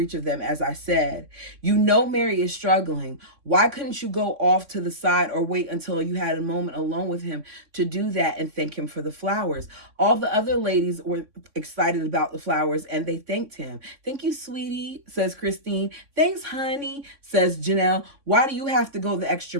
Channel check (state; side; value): late; left; 3.6 ms